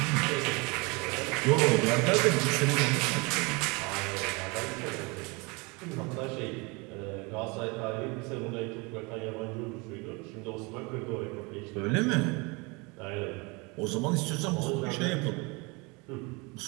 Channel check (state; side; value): quieter; left; 28.0 dB